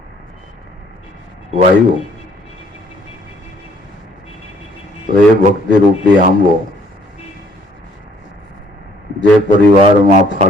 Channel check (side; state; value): both; normal; correlation 0.62